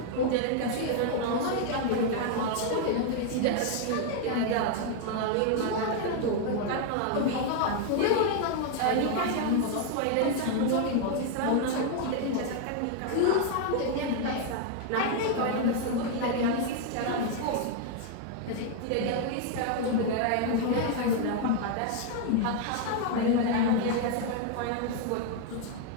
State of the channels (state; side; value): different; both; correlation 0.00